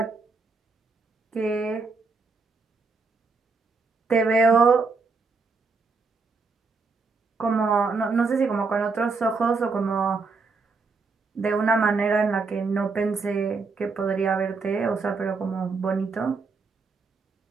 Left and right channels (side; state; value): left; quieter; 4.4 dB